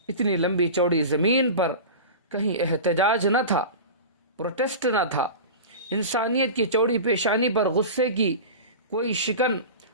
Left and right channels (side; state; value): both; inverted; correlation -0.31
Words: اتنی لمبی چوڑی زمین پر کہیں احتجاج نہ تھا، پروٹیسٹ نہ تھا. انسانیت کی چوڑی پیشانی پر غصے کی کوئی شکن